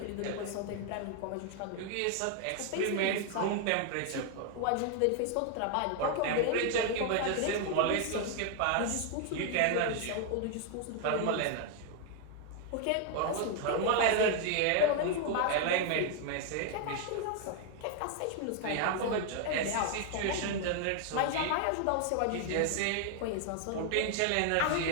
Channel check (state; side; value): different; both; correlation 0.00